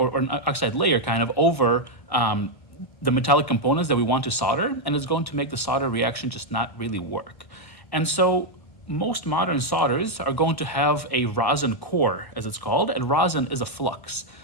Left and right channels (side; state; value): right; late; 1.1 ms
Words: an oxide layer kind of over the metallic components that we want to solder, and it's going to make the solder reaction just not really work. And so most modern solders are going to have a rosin core, as it's called, and rosin is a flux.